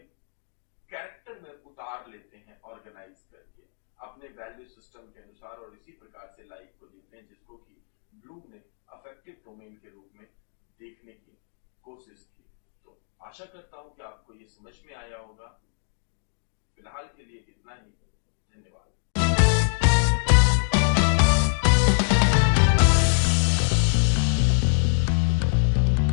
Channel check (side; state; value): right; silent; digital silence